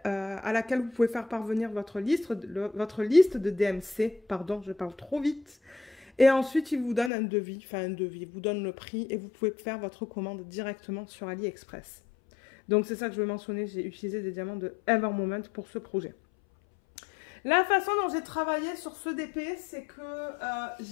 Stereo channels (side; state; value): right; drops out; at 7.1 s